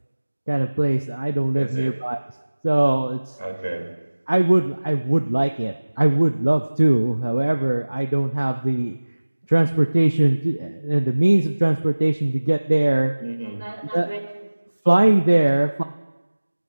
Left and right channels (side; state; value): both; inverted; correlation -1.00